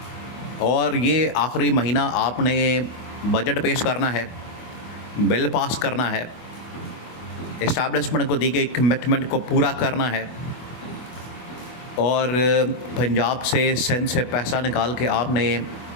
और ये आखिरी महीना आपने बजट पेश करना है, बिल पास करना है, इस्टेब्लिशमेंट को दी गई कमिटमेंट को पूरा करना है और पंजाब से सिंध से पैसा निकाल के आपने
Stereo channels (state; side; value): late; right; 24 ms